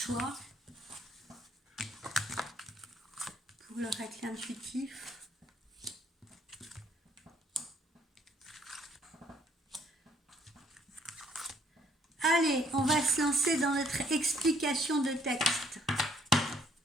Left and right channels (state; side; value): normal; both; correlation 0.65